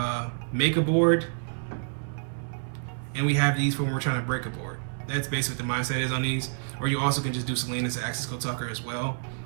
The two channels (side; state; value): left; silent; digital silence